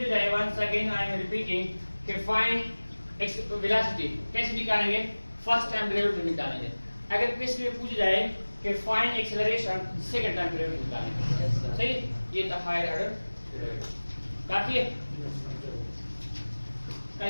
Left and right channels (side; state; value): both; inverted; correlation -1.00